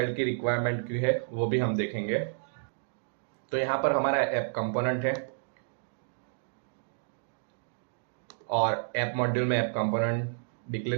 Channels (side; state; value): left; silent; digital silence